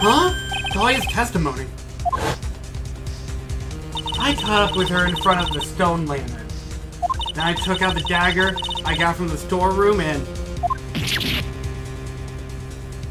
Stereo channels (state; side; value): identical; both; correlation 1.00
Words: Huh? Dahlia's testimony. I caught up with her in front of the stone lantern. Then I took out the dagger I got from the storeroom and...